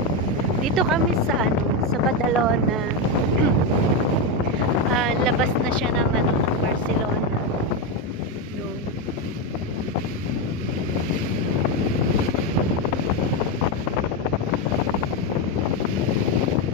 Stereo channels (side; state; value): both; normal; correlation 0.09